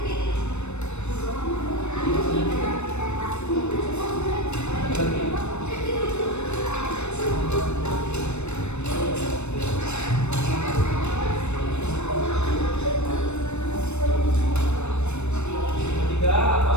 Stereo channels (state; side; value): late; right; 0.82 ms